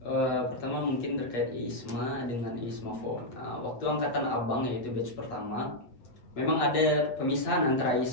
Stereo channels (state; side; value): late; right; 8.4 ms